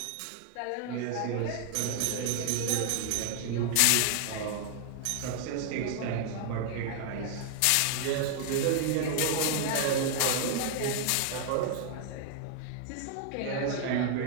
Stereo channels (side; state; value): both; different; correlation 0.00